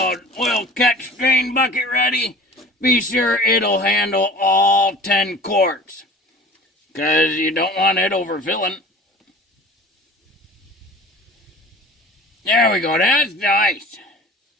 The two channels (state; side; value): normal; both; correlation 0.42